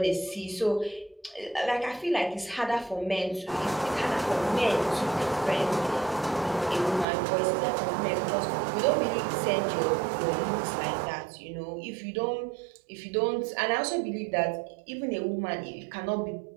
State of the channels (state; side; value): drops out; left; at 7.1 s